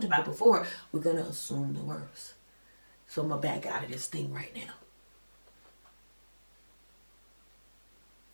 before, we're going to assume the worst. So I'm going to back out of this thing right now.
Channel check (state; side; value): inverted; both; correlation -1.00